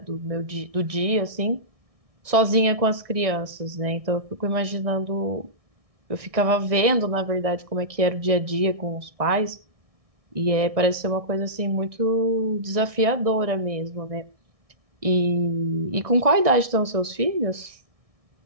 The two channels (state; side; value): late; left; 1.6 ms